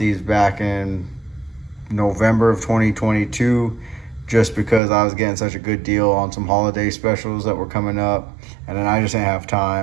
back in November of 2022 just because I was getting such a good deal on some holiday specials that were coming up, and then I just didn't have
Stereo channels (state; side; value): drops out; left; at 4.8 s